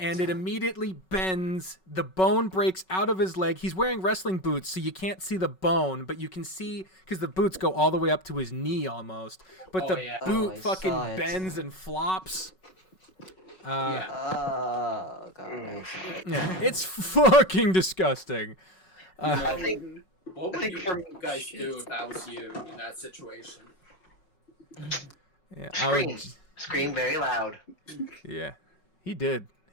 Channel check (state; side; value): late; right; 5.4 ms